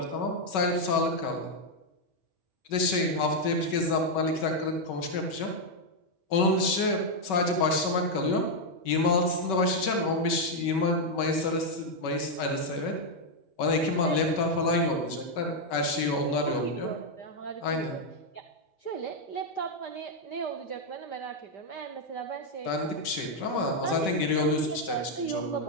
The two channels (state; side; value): late; right; 5.2 ms